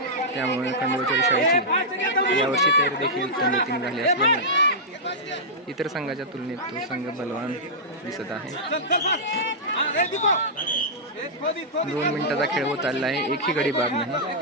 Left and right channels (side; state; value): both; normal; correlation -0.11